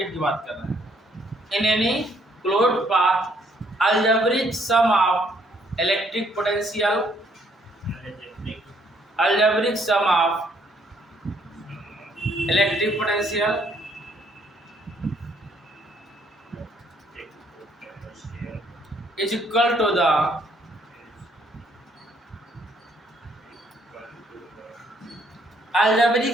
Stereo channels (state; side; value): normal; both; correlation 0.67